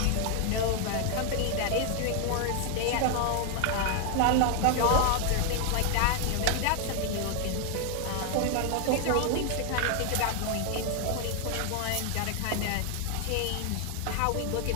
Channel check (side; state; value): both; different; correlation 0.00